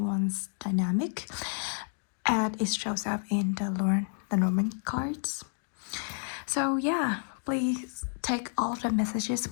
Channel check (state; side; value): silent; right; 55 dB below the other